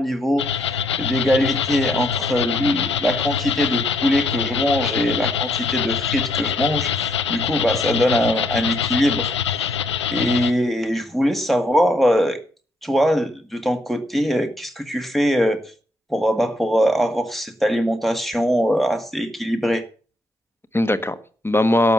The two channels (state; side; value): normal; both; correlation 0.74